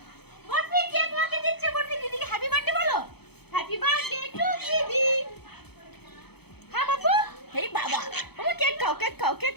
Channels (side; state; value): right; late; 0.97 ms